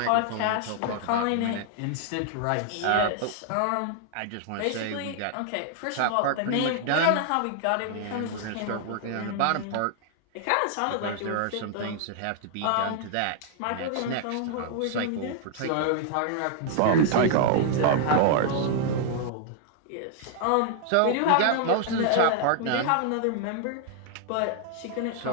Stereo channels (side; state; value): both; different; correlation 0.00